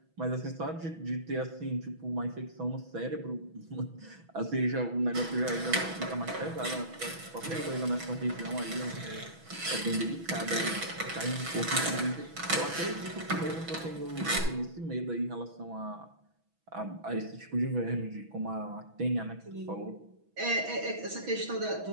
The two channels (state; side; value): late; left; 6.1 ms